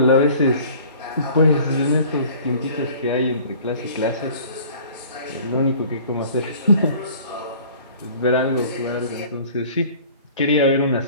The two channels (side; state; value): both; inverted; correlation -0.48